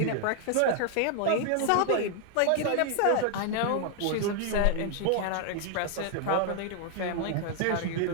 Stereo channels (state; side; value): different; both; correlation 0.00